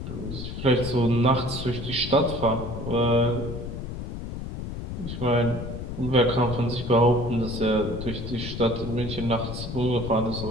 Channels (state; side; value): noise; left; rumble, 7 dB below the sound